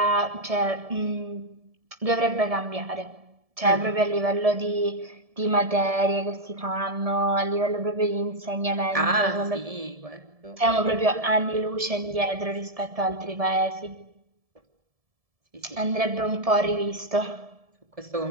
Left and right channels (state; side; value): late; left; 1.7 ms